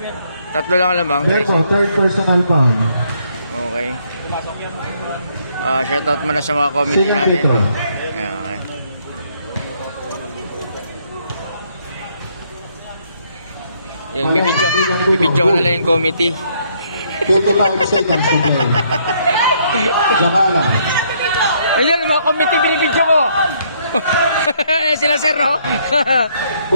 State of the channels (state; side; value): inverted; both; correlation -0.69